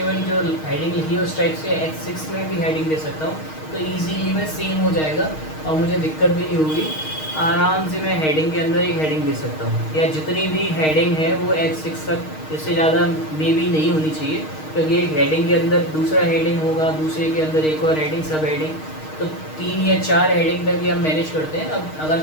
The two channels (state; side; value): late; right; 6.4 ms